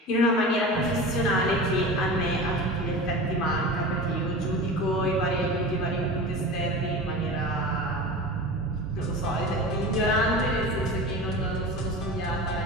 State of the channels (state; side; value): normal; both; correlation 0.32